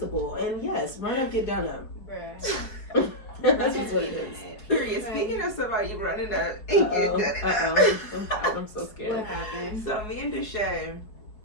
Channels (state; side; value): late; right; 4.7 ms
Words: And yes, run up, get done up. Bruh. That's just what it is. period. Right. Speaking of somebody running up and getting done it up. I'm so scared. What happened? So me and Deshae,